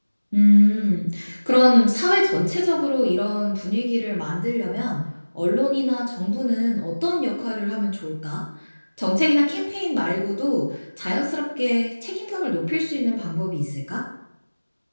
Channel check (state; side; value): inverted; both; correlation -1.00